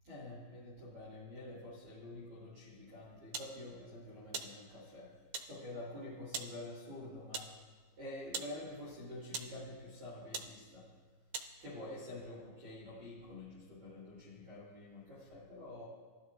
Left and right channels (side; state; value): left; late; 15 ms